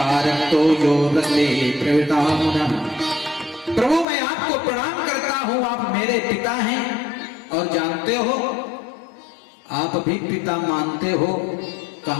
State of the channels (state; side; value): drops out; right; at 4.0 s